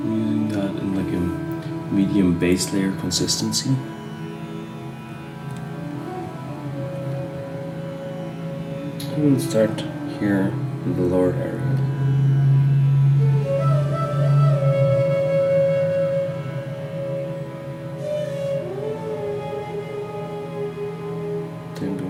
using that in like a medium base layer consistency. We'll start here in the lower area. Then we'll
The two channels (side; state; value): both; identical; correlation 1.00